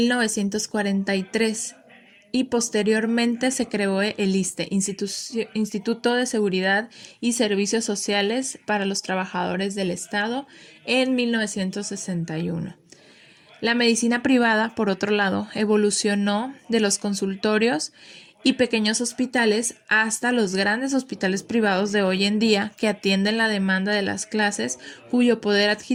y posteriormente se creó el ISSSTE, Instituto de Seguridad y Servicios Sociales para los Trabajadores del Estado, en 1961. La medicina privada, por otro lado, evolucionó de los consultorios y pequeños hospitales hasta los grandes hospitales privados de hoy en día que atienden la demanda de las clases cuyo poder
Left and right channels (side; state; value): both; identical; correlation 1.00